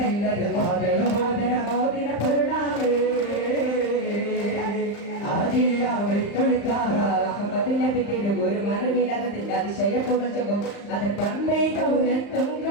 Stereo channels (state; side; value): late; right; 35 ms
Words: മോദന മോദന മോദിന പൊരുളാവേ ആദിയാവൈ തൊളിത്താറ തിരുഗുരു മലവിലകത്തിന്റെ അതിശയ പുകഴ്ചും അത് പമ്പൈ കൗരത്തും